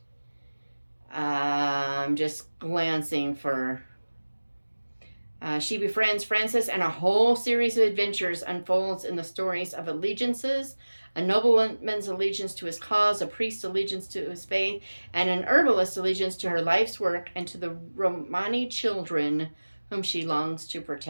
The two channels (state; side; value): inverted; both; correlation -1.00